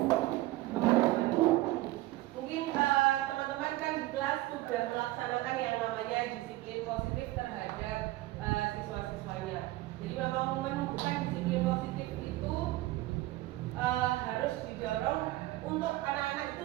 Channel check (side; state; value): left; quieter; 17.9 dB